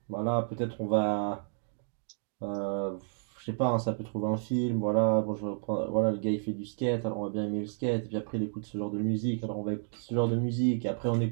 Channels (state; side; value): silent; left; digital silence